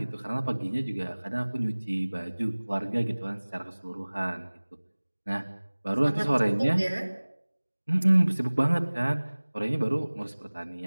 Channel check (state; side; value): inverted; both; correlation -1.00